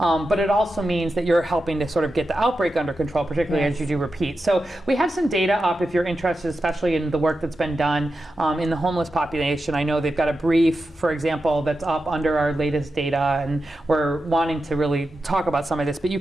it also means that you're helping to sort of get the outbreak under control, particularly as you do repeat. So we have some data up if you're interested, especially in the work that's been done in the homeless population. I know they've got a brief, for example, that's up under our latest data, and we're wanting to really talk about some of this. But you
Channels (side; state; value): both; normal; correlation 0.90